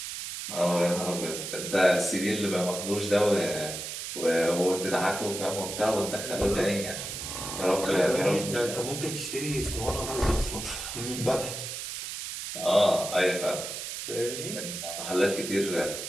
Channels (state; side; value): noise; right; hiss, 6 dB below the sound